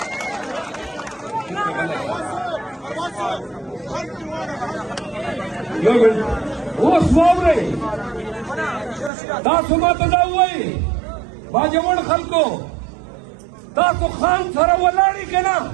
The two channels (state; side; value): drops out; left; at 9.1 s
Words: اوس واورئ تاسو ماته دا ووایئ باجوړ خلکو تاسو خان سره ولاړئ که نه؟